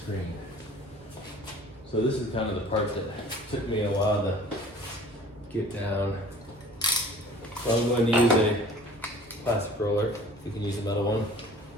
So this is kind of the part that took me a while to get down. So I'm going to use a plastic roller. You can use a metal one.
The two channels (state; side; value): normal; both; correlation 0.48